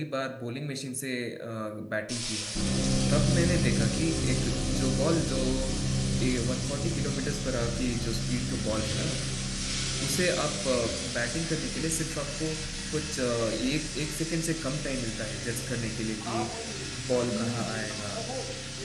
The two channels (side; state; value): both; identical; correlation 1.00